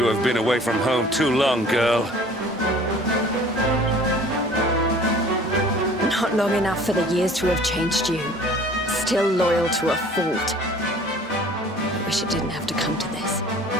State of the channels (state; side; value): normal; both; correlation 0.49